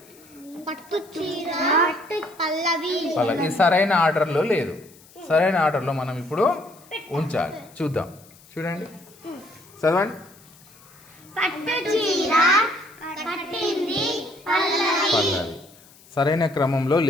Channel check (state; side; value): noise; left; hiss, 25 dB below the sound